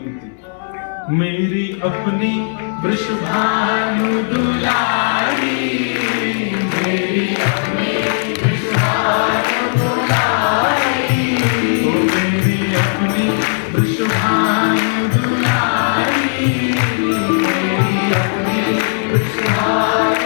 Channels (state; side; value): silent; right; digital silence